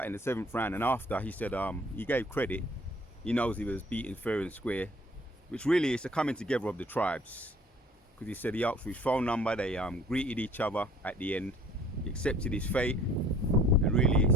in the 7th round, and after he said he gave credit. He knows he was beaten fair and square, which really is the coming together of the tribes. Because he said he asked for his phone number, they greeted each other at the end. He accepted his fate, and really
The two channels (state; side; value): normal; both; correlation 0.54